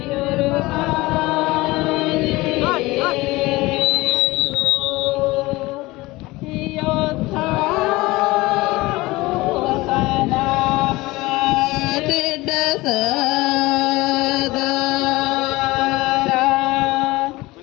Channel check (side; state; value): right; quieter; 20.6 dB